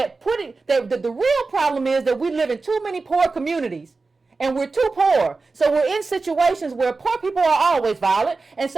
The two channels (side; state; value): left; quieter; 3.9 dB